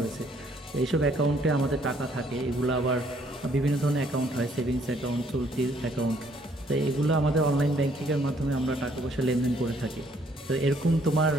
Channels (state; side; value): normal; both; correlation 0.65